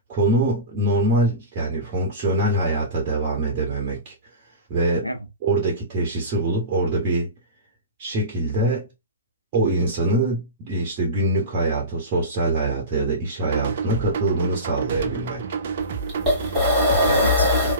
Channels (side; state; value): both; inverted; correlation -0.30